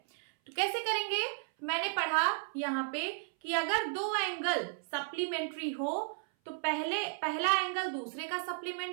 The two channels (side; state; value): left; silent; 55 dB below the other